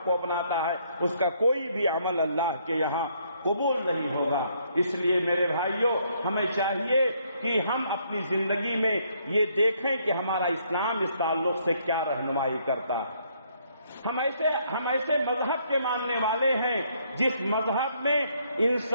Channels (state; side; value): inverted; both; correlation -0.69